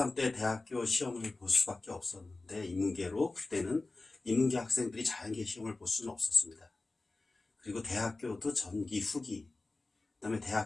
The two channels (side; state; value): right; quieter; 3.3 dB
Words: 때 대학교 시험을 볼 수밖에 없었는데 인문계로 그때는 인문계 학생들이 자연계 시험을 볼 수는 없었습니다. 그리고 대학교도 전기 후기, 그 다음에